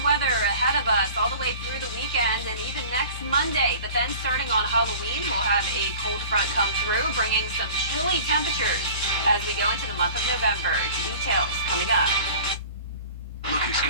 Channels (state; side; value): inverted; both; correlation -0.41